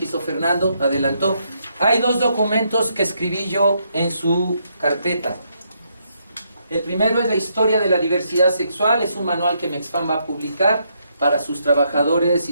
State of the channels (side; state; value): both; inverted; correlation -0.76